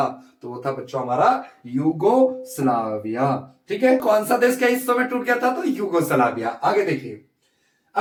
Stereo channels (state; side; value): identical; both; correlation 1.00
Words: तो वो था बच्चों हमारा यूगोस्लाविया। ठीक है, कौन सा देश कई हिस्सों में टूट गया था? तो यूगोस्लाविया। आगे देखिए